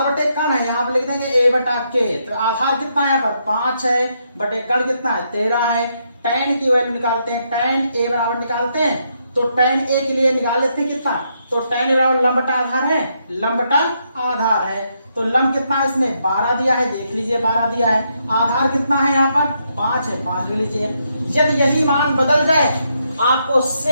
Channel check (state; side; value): inverted; both; correlation -0.78